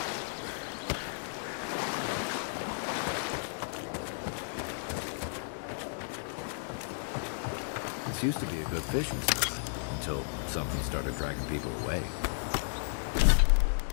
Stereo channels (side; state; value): right; silent; digital silence